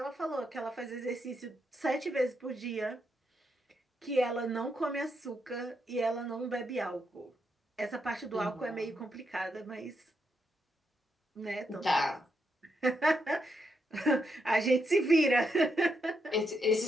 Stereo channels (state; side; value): normal; both; correlation 0.81